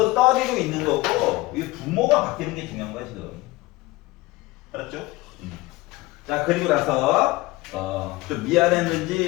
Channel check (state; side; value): quieter; right; 20.4 dB